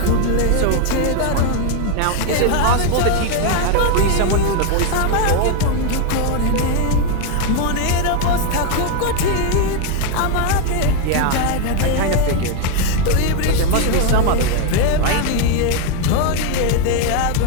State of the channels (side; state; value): both; different; correlation 0.01